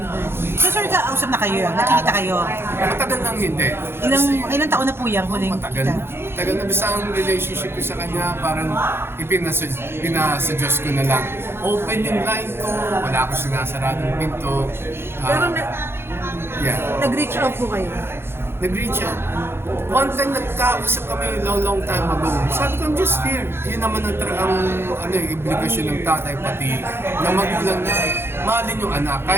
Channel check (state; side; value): late; left; 0.11 ms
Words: So sir, kausap na kayo, nakikita kayo. Matagal lang hindi. Ilang taon na po yung huling Matagal. kita? Tagal na basta ang relationship ko sa kanya, parang pinasa-Diyos ko na lang. Open yung line ko, wala akong sinasaradong pinto. Pero Yeah. nag-reach out po kayo? Nag-reach out. One time nagkausap kami long time ago. Sabi ko, I'm just here. Yun naman yung obligasyon ng tatay pati ng magulang na mahalin yung anak